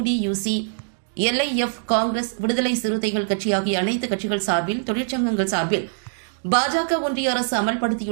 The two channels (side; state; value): left; silent; digital silence